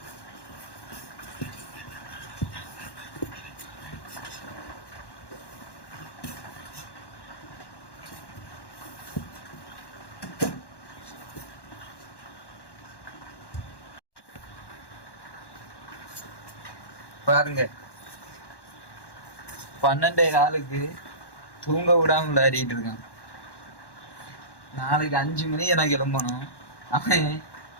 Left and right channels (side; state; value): right; late; 1.1 ms